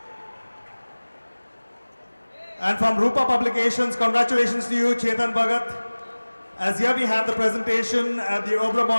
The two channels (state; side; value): inverted; both; correlation -1.00